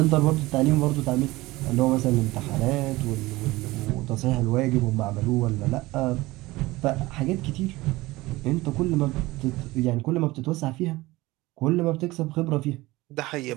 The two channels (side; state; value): left; quieter; 19.7 dB